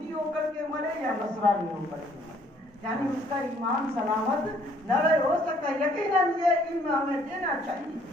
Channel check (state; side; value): normal; both; correlation 0.63